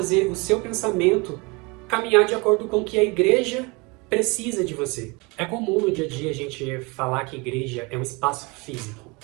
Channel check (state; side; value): quieter; left; 27.3 dB